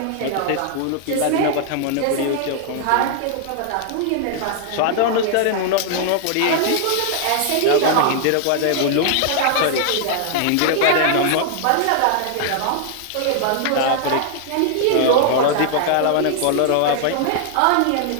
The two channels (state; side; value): different; both; correlation 0.00